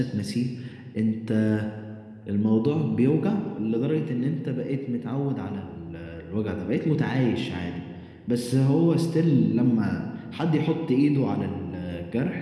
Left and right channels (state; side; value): identical; both; correlation 1.00